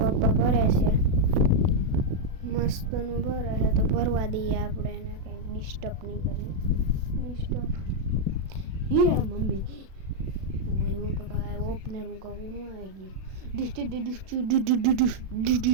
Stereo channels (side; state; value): left; late; 37 ms